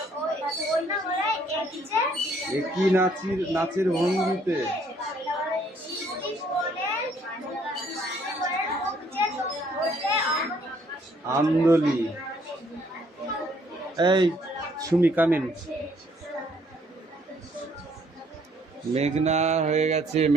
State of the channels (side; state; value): both; normal; correlation 0.65